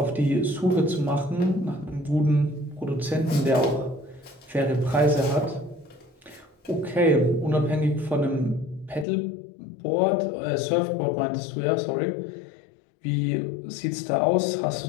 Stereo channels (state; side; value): drops out; right; at 9.1 s